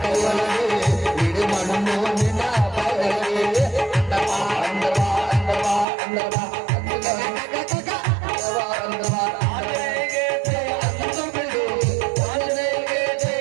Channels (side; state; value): left; drops out; at 5.9 s